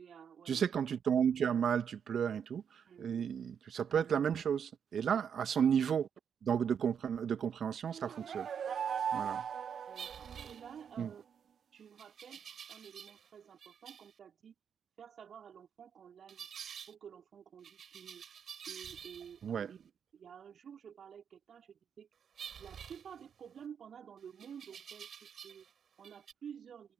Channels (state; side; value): quieter; left; 7.6 dB